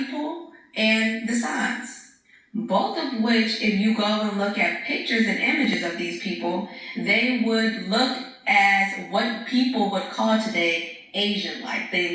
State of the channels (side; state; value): both; identical; correlation 1.00